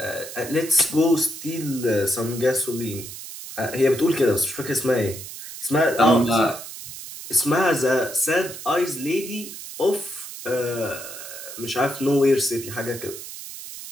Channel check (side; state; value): right; noise; hiss, 11 dB below the sound